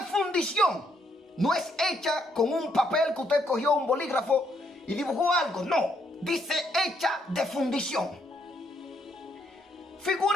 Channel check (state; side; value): normal; both; correlation 0.73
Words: fundición. No es hecha con un papel que usted cogió un bolígrafo y dibujó algo, no, dice hecha de fundición.